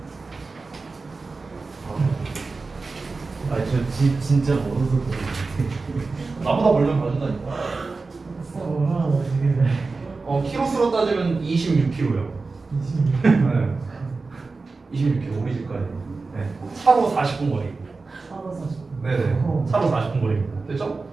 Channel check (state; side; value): quieter; left; 3.9 dB